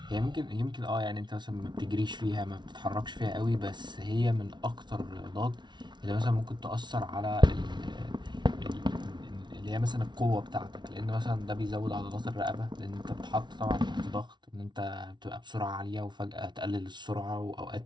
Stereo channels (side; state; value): left; late; 0.21 ms